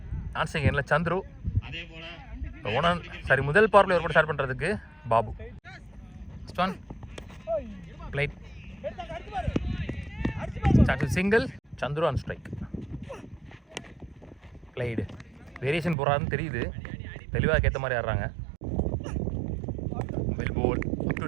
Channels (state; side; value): drops out; left; at 16.0 s